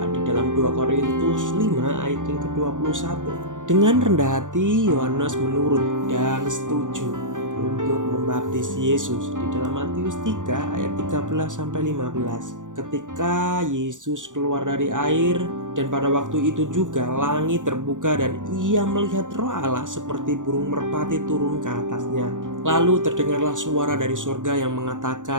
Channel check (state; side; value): late; left; 0.87 ms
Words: di dalam 2 Korintus 5 ayat yang ke-21. Dengan rendah hati Yohanes menurut dan setuju untuk membaptis Yesus di dalam Matius 3 ayat 13-15. Ketika Yesus keluar dari air, dan pada waktu itu juga langit terbuka dan ia melihat Roh Allah seperti burung merpati turun ke atasnya. Lalu terdengarlah suara dari surga yang